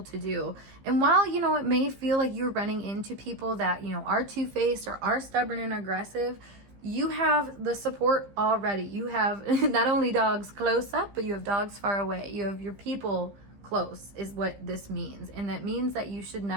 to do. And while, you know, it may feel like you're running into people that, you know, are two-faced or are stubborn and aggressive, you have the support already. You have not only dogs close up, but you have dogs far away. You have your people close, is what this means. And that means that you should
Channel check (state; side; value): late; left; 15 ms